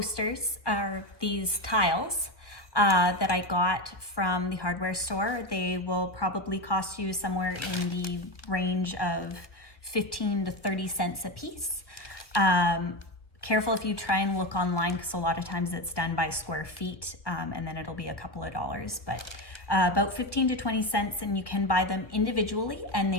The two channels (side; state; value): right; late; 1.3 ms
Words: or these tiles, that I got from the hardware store. They will probably cost you somewhere in the range of 15 to 30 cents a piece. Careful if you try and look online, because a lot of times it's done by square feet, and then it'll be a couple of dollars, but about 15 to 20 cents, and you can buy them individually, and they